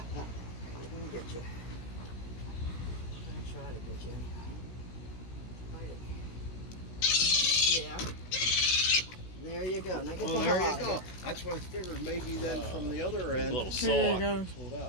get you. We're gonna try to get you. Bite it. Yeah. There you go. Now get Well, the there hell you out of go. here. That's what I figured. Maybe then from the other end. A little Pulled sore.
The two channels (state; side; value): late; right; 16 ms